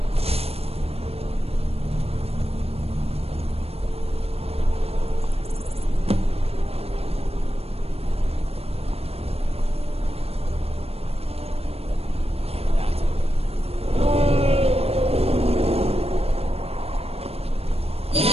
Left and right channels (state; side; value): late; left; 0.29 ms